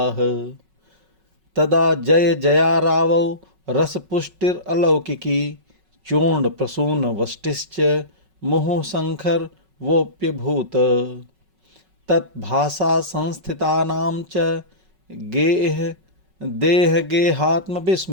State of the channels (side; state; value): left; late; 5.4 ms